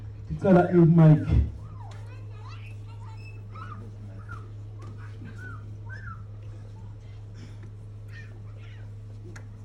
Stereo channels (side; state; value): both; identical; correlation 1.00